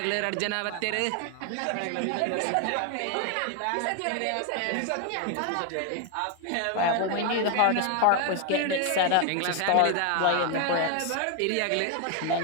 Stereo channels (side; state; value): both; different; correlation 0.00